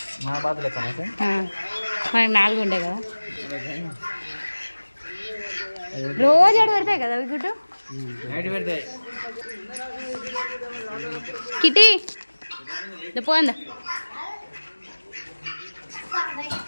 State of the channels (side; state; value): both; inverted; correlation -1.00